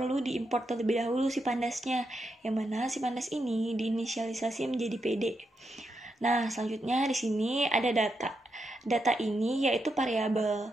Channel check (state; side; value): normal; both; correlation 0.84